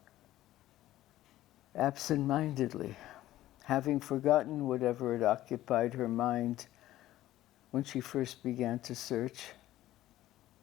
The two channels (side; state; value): right; quieter; 14.6 dB